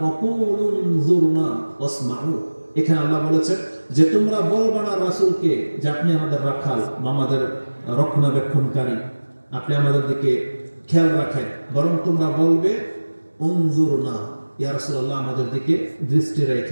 ওয়া কুলু উনজুরনা ওয়াসমাউ। এখানে আল্লাহ বলেছেন যে তোমরা বলবা না রাসূলকে যে আপনি আমাদের রাখাল বা আমাদের রক্ষণাবেক্ষণকারী, আপনি আমাদের দিকে খেয়াল রাখেন, বরং তোমরা বলবে উনজুরনা, ইয়া রাসূলুল্লাহ আমাদের দিকে দৃষ্টি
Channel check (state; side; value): inverted; both; correlation -1.00